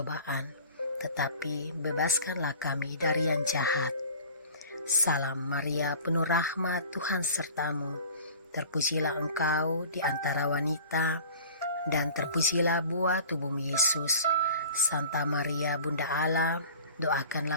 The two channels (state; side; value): inverted; both; correlation -0.42